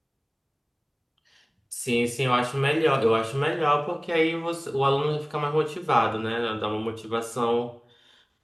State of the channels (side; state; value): both; identical; correlation 1.00